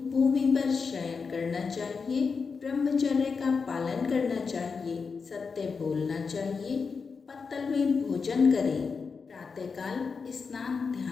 भूमि पर शयन करना चाहिए। ब्रह्मचर्य का पालन करना चाहिए। सत्य बोलना चाहिए। पत्तल में भोजन करें। प्रातःकाल स्नान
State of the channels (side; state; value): right; quieter; 5.2 dB